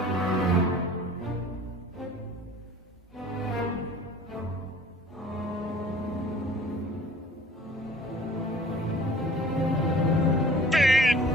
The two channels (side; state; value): both; normal; correlation 0.49